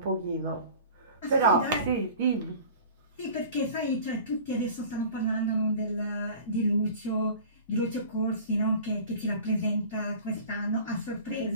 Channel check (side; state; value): both; inverted; correlation -0.42